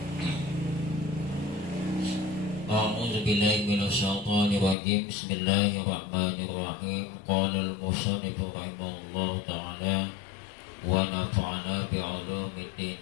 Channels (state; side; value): drops out; right; at 4.8 s